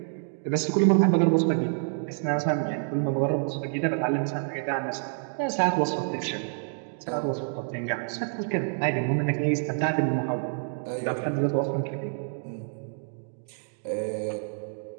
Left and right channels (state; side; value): silent; left; digital silence